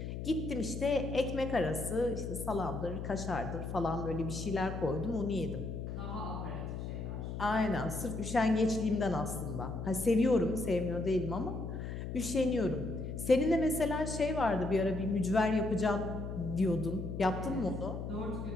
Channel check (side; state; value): left; noise; hum, 6 dB below the sound